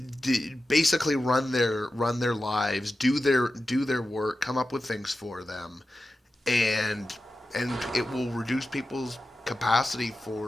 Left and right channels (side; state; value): both; normal; correlation 0.93